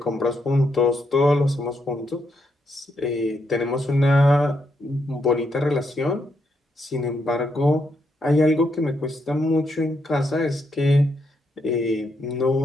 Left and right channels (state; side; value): normal; both; correlation 0.79